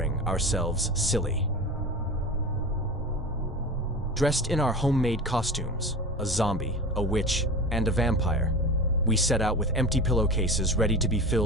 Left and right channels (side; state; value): both; normal; correlation 0.31